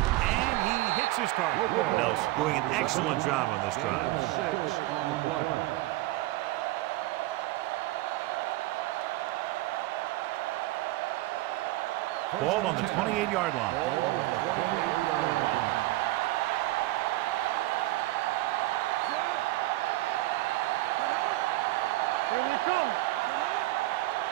he hits his target. Nelson doing an excellent job on this drive. 6 on the play. Ball on the 28-yard line. Ball on the 28-yard line. Yeah, you see me. Here we come.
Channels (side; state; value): left; quieter; 18.3 dB